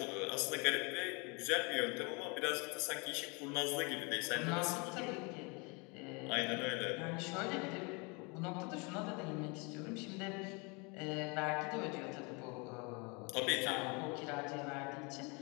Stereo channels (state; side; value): quieter; right; 30.1 dB